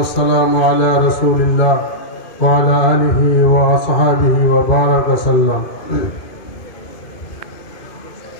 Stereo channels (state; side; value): late; right; 2.5 ms